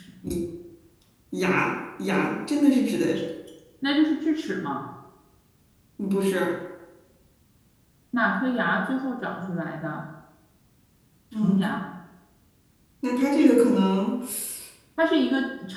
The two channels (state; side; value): identical; both; correlation 1.00